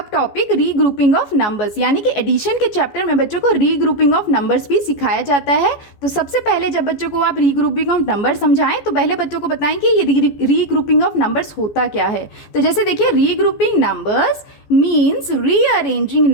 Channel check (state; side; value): late; right; 14 ms